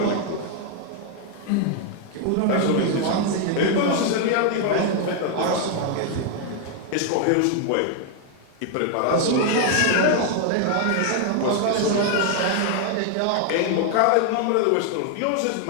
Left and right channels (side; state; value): both; different; correlation 0.00